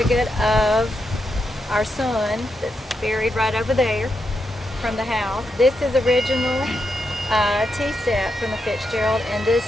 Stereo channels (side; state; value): both; normal; correlation 0.84